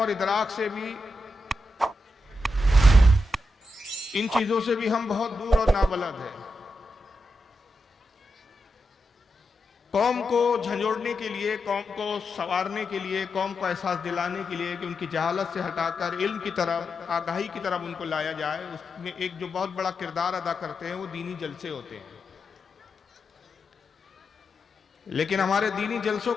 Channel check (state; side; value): normal; both; correlation 0.87